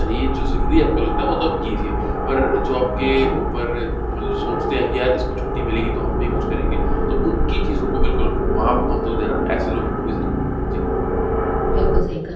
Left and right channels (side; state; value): both; identical; correlation 1.00